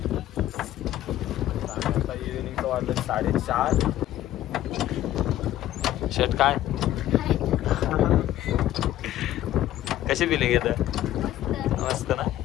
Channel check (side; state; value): right; quieter; 13.4 dB